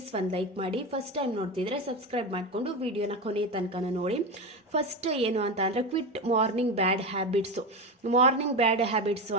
ಒಂದು ಲೈಕ್ ಮಾಡಿ. ಫಸ್ಟ್ ಟೈಮ್ ನೋಡ್ತಿದ್ರೆ ಸಬ್ಸ್ಕ್ರೈಬ್ ಮಾಡಿಕೊಂಡು ವಿಡಿಯೋನ ಕೊನೆ ತನಕ ನೋಡಿ. ಫಸ್ಟ್ ಏನು ಅಂತ ಅಂದರೆ ಕ್ವಿಟ್ ಮಾರ್ನಿಂಗ್ ಬ್ಯಾಡ್ ಹ್ಯಾಬಿಟ್ಸು. ಮಾರ್ನಿಂಗ್ ಬ್ಯಾಡ್ ಹ್ಯಾಬಿಟ್ಸು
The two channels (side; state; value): both; normal; correlation 0.19